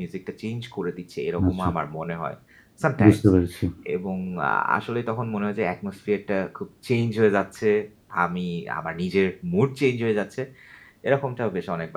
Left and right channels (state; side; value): identical; both; correlation 1.00